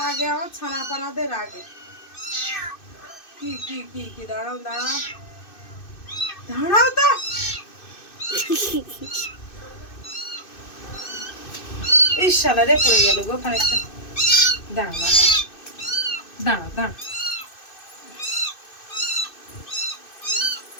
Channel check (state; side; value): late; right; 2.6 ms